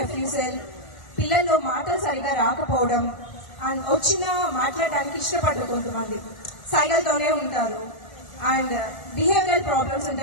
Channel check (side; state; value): right; late; 1.4 ms